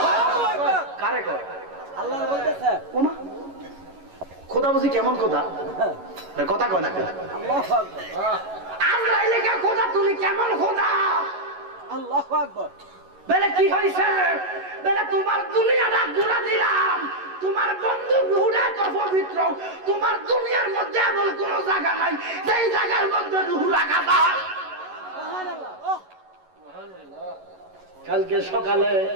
কারে কয়? আল্লাহ বলতেছে, ওমা খোদা বুঝি কেমন খোদা? কথা কয় না, আজরাইলে কে খোদা তুমি কেমন খোদা? আল্লাহু আকবার। বলে কি হইছে? বলে তোমার দুনিয়াটা ঘুরা দিলাম, তোমার বন্ধু রূহটা তো পবিত্র, তোমার দুনিয়ার মধ্যে এমন কোন জায়গা নাই যেই জায়গার মধ্যে রূহ রাখা যায়। কালকে সকালে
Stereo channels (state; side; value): late; left; 11 ms